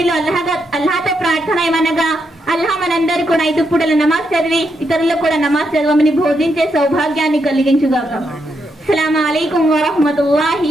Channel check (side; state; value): both; normal; correlation 0.81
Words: అల్లాహతో ప్రార్థన ఏమనగా, అల్లాహ్ మనందరూ కూడా 5 పూటల నమాజ్ చదివి ఇతరులకు కూడా నమాజ్ చదవమని బోధించే సౌభాగ్యాన్ని కలిగించుగాక. అస్సలాము అలైకుం వరహ్మతుల్లాహి